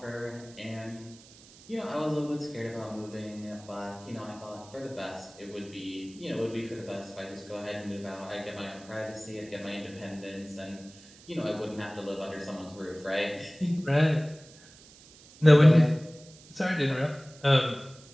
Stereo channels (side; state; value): right; noise; hiss, 22 dB below the sound